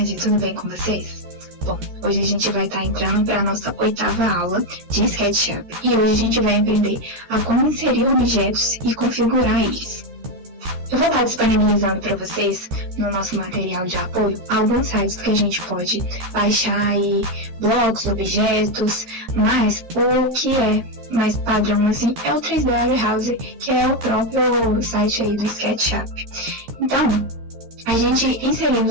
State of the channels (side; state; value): left; late; 13 ms